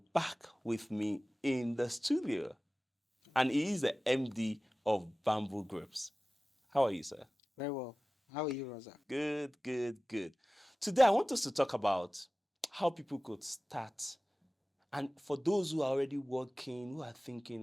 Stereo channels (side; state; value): both; normal; correlation 0.97